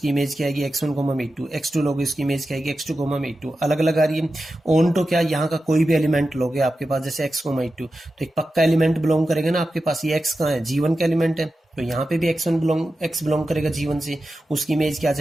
इमेज क्या आएगी x1 कोमा में E2, x2 लोगे उसकी इमेज क्या आएगी x2 कोमा में E2, अलग अलग आ रही है। ऑन तो क्या यहाँ का कोई भी एलिमेंट लोगे आपके पास जैसे x कोमा E2 तो एक पक्का एलिमेंट बिलोंग करेगा ना आपके पास, ये x कहाँ है G1 का एलिमेंट है तो यहाँ पे भी x बिलोंग करेगा G1 से, उसकी इमेज क्या आ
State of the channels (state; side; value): normal; both; correlation 0.92